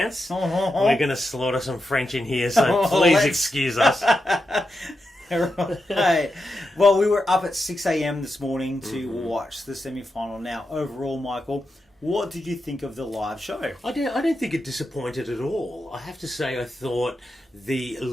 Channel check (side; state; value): both; normal; correlation 0.87